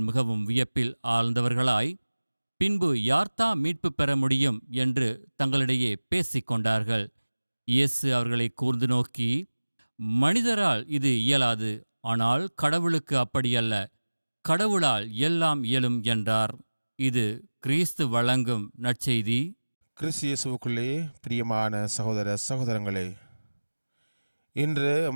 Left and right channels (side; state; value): both; inverted; correlation -1.00